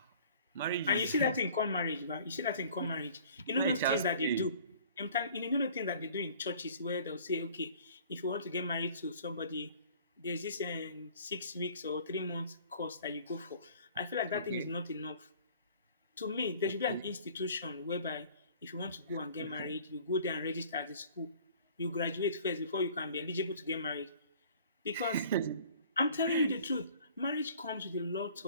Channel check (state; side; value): inverted; both; correlation -0.51